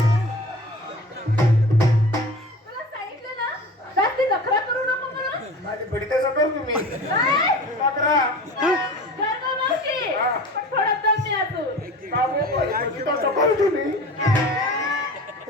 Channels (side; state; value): both; normal; correlation 0.37